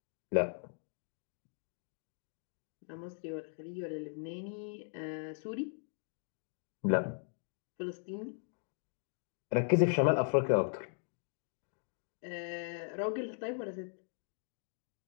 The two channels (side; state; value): right; silent; digital silence